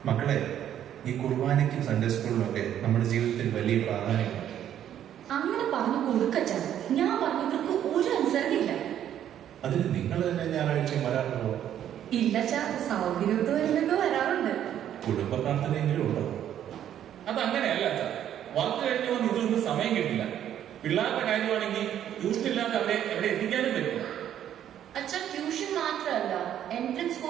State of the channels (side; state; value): left; quieter; 10.5 dB